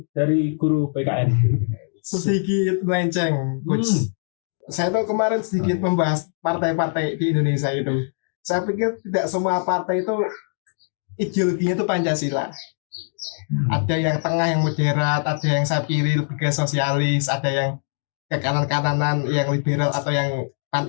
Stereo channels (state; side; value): silent; right; digital silence